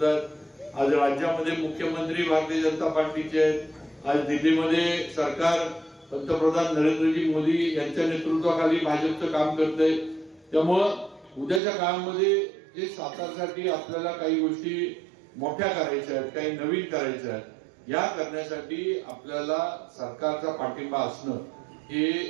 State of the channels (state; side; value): drops out; left; at 11.6 s